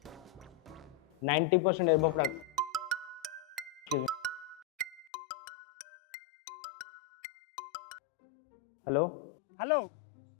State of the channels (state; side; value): drops out; right; at 5.1 s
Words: 90% एबव हेलो हेलो